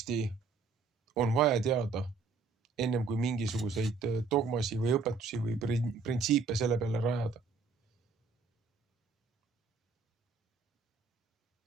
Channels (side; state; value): left; quieter; 4.5 dB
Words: on vaja teada ennem kui mingisuguseid dogmasi või õpetusi või printsiipe selle peale rajada.